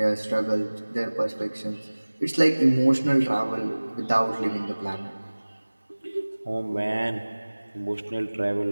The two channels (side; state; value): both; inverted; correlation -1.00